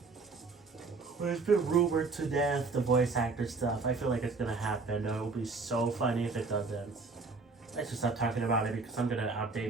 Well, it's been rumored to death, the voice actor stuff. I feel like it's gonna happen. It will be so funny if it doesn't. Let's just stop talking about it because I'm gonna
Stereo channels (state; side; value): quieter; left; 4.1 dB